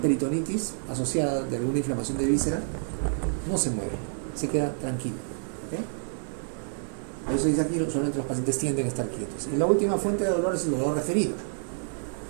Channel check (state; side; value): silent; left; 59 dB below the other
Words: peritonitis asociada de alguna inflamación de víscera no se mueve, se queda tranquilo. ¿Ok? Por eso dice aquí, solamente los pacientes tienden a estar quietos. Y la última fuente de dolor es el dolor referido.